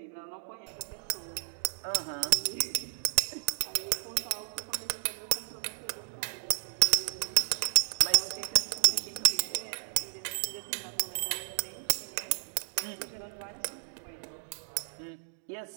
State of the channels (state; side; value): silent; left; digital silence